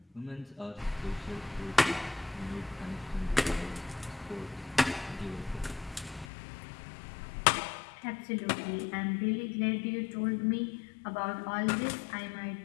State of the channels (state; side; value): drops out; right; at 6.2 s